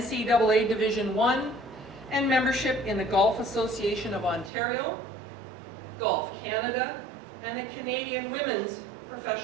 Division I and membership in the Golf Association of Ontario, Golf Canada, and the Canadian Women's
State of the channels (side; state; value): left; drops out; at 4.5 s